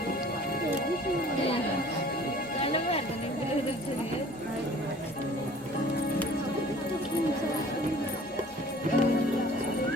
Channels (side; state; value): both; normal; correlation 0.50